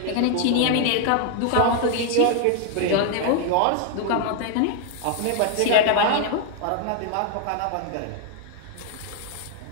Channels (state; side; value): different; both; correlation 0.00